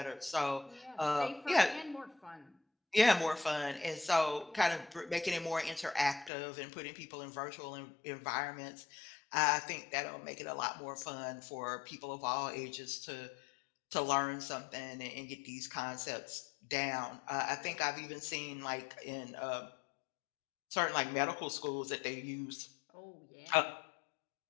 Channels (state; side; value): drops out; right; at 6.3 s